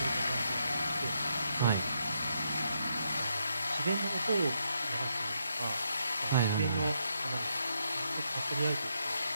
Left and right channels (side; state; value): both; inverted; correlation -0.79